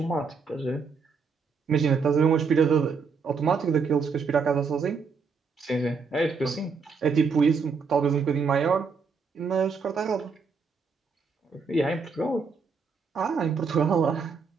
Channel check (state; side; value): quieter; left; 5.2 dB